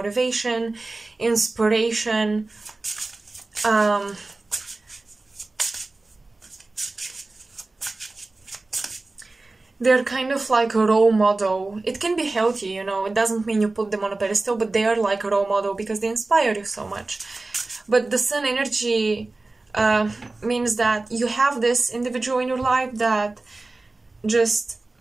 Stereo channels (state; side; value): quieter; left; 3.3 dB